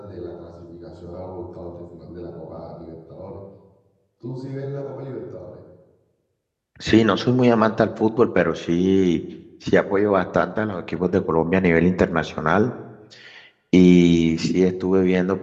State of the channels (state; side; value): identical; both; correlation 1.00